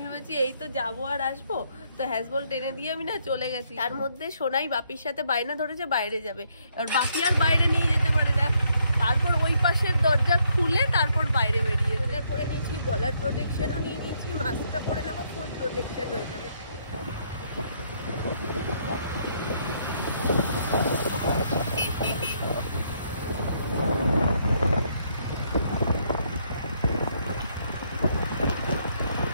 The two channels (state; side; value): inverted; both; correlation -0.71